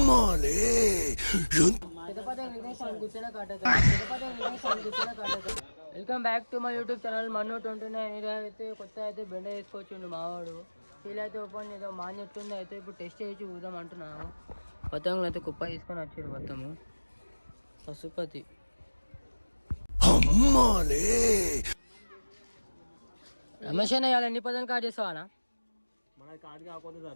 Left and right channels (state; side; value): inverted; both; correlation -1.00